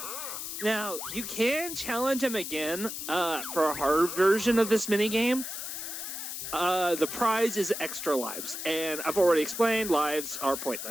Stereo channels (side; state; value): left; noise; hiss, 6 dB below the sound